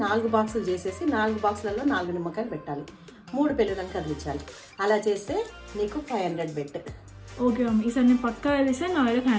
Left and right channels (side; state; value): both; identical; correlation 1.00